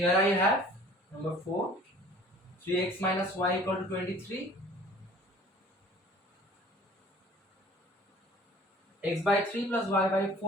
I have number 4, 3x minus y equal to 23, x by 3 plus y by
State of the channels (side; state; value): both; normal; correlation 0.50